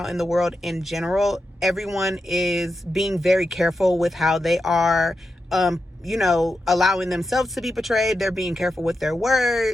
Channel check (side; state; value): both; normal; correlation 0.88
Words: in the world in general, everyone is being very careful with how they are, allowing themselves to be portrayed. They're being careful with their